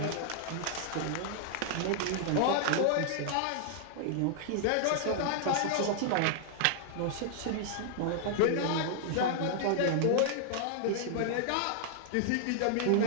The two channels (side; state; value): both; different; correlation -0.01